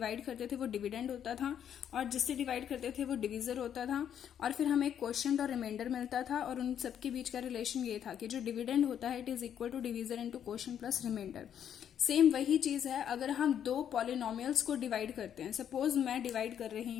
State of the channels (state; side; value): quieter; right; 9.3 dB